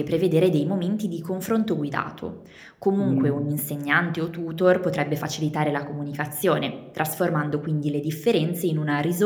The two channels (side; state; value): both; identical; correlation 1.00